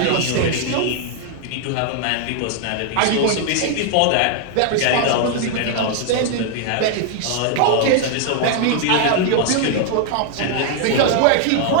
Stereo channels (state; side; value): different; both; correlation 0.00